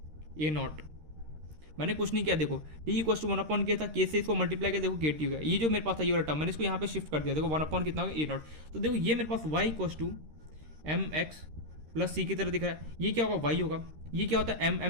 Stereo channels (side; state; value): left; late; 13 ms